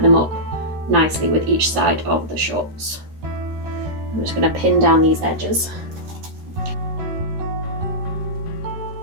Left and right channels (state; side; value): late; left; 13 ms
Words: them up nicely with each side of the shorts. I'm just going to pin down these edges.